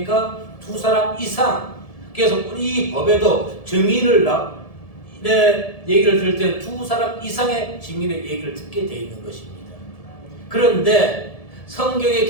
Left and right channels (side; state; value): right; late; 1.7 ms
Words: 2사람 이상. 그래서 이 법에도 증인을 얘기를 들을 때는 2사람 이상의 증인의 얘기를 듣게 되어 있는 것입니다. 그런데 성경에